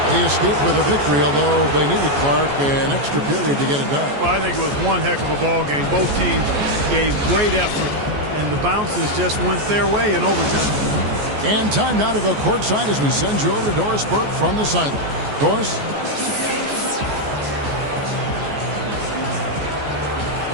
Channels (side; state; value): left; late; 14 ms